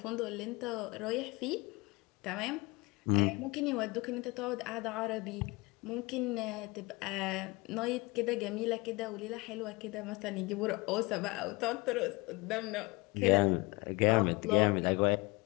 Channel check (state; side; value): quieter; right; 24.9 dB